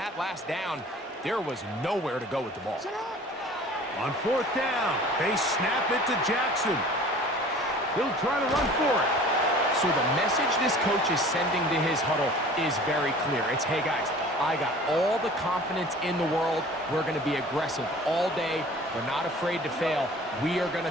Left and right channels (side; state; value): both; normal; correlation 0.46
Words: last down, there was nowhere to go with the ball. On fourth down, they snap it to Jackson. He'll try to run for it. So the message this coach is sending to his huddle is very clear. It's, hey, guys, I got all the confidence in the world. We're going to be aggressive all day. We're not afraid to fail. We are going